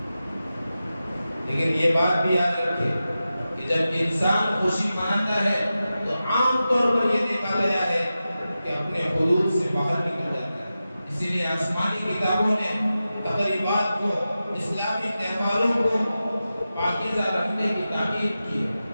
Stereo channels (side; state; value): both; inverted; correlation -0.93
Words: لیکن یہ بات بھی یاد رکھے کہ جب انسان خوشی مناتا ہے تو عام طور پر یہ دیکھا گیا ہے کہ اپنے حدود سے باہر نکل جاتا ہے. اسی لیے آسمانی کتابوں نے تقریبات کو، اسلامی تہواروں کو پاکیزہ رکھنے کی تاکید کی ہے.